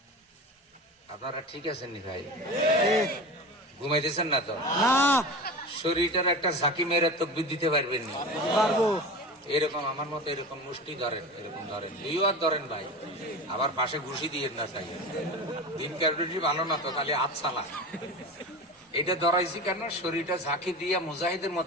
আপনারা ঠিক আছেন নি ভাই? ঘুমাইতেছেন না তো? না শরীরটার একটা ঝাঁকি মেরে তকবির দিতে পারবেন না? পারবো। এরকম আমার মতো এরকম মুষ্টি ধরেন, এরকম ধরেন, দুইও আর ধরেন ভাই, আবার পাশে ঘুষি দিয়ে না চাই। দিন ক্যালকুলেটর ভালো না তো, খালি হাত চালা। এটা ধরাইছি কেন? শরীরটা ঝাঁকি দিয়ে মুজাহিদের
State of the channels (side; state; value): both; normal; correlation 0.30